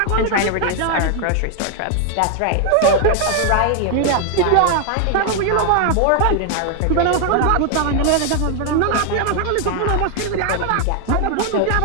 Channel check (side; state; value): both; different; correlation 0.00